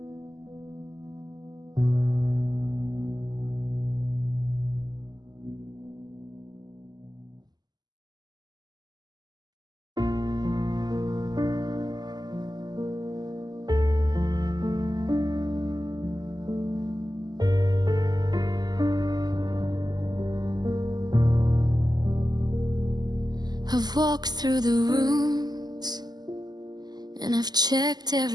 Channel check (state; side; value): late; left; 0.20 ms